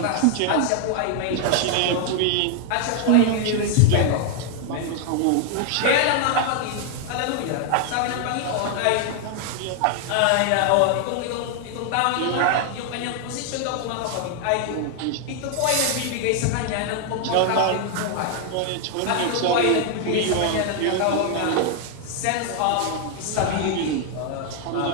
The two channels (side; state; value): both; different; correlation 0.00